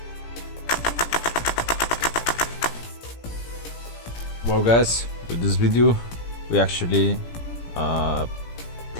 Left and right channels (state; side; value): late; right; 17 ms